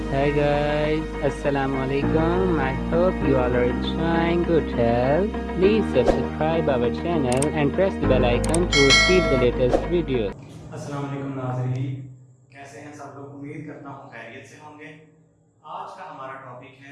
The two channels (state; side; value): identical; both; correlation 1.00